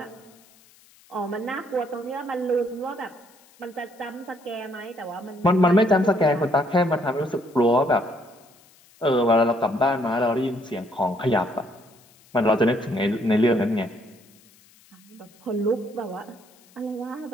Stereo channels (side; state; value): left; noise; hiss, 28 dB below the sound